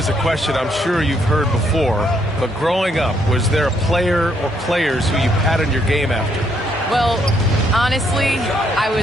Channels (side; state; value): both; normal; correlation 0.72